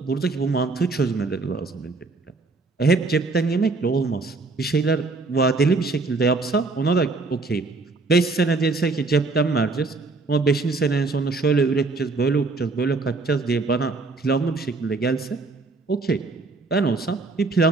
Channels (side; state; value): left; quieter; 3.8 dB